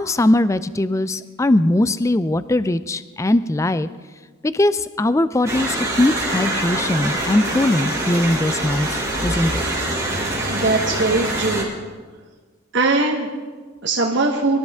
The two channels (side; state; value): both; normal; correlation 0.61